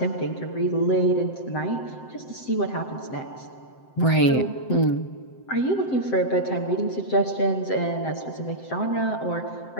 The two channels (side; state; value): right; late; 7.7 ms